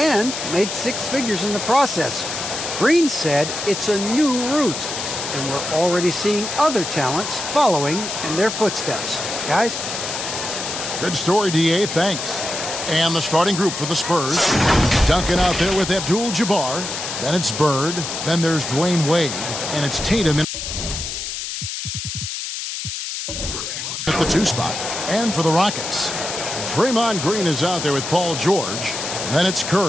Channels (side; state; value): left; noise; hiss, 5 dB below the sound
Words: made 6 figures in the process. Green said it's a new route, and we're already seeing other talents following in their footsteps. Guys? Good story, D.A. Thanks. And the starting group for the Spurs. Duncan out there with Abdul-Jabbar. Then it's Bird. Then there's Dwayne Wade. And it's Tatum at the 2 spot. And for the Rockets, Draymond Green is out there with Paul George. Then it's